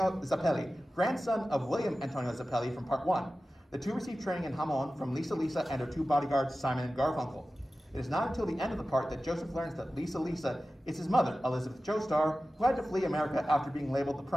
Zappelli, grandson of William Antonio Zappelli from part 1. The two receive training in Hamon from Lisa and her 2 bodyguards, Simon and Garfunkel. It is not until the end of the part that Joseph learns that Lisa is his mother, Elizabeth Joestar, who had to flee America after being labeled the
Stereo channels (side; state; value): both; normal; correlation 0.95